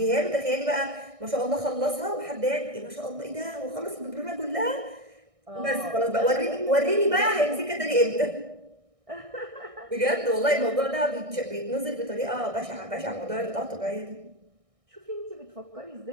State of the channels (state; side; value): late; left; 1.6 ms